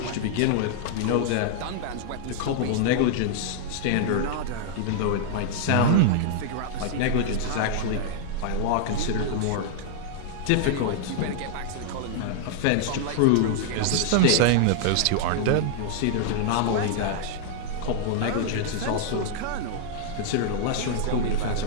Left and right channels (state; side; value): different; both; correlation -0.01